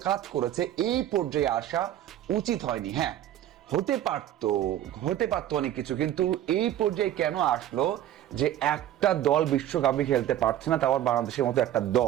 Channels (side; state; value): left; quieter; 12.2 dB